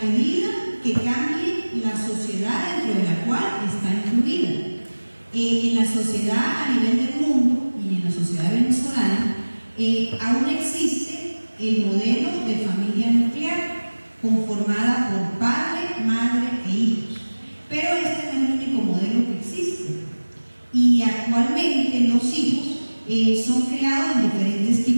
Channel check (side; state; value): both; inverted; correlation -1.00